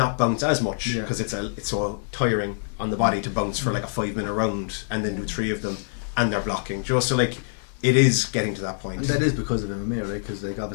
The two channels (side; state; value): right; silent; digital silence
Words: bounce as much, because it's so tiring on the body to bounce for like a 5-minute round and then do 3 of them, and they're blocking. Just so like, it is getting to that point. And that is because of MMA, right? Because like